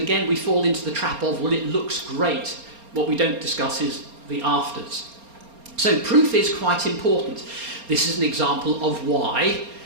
again, we fall into the trap of, well, it looks great. What we don't discuss is the afters. So proof is quite important. This is an example of why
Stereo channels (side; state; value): left; late; 4.3 ms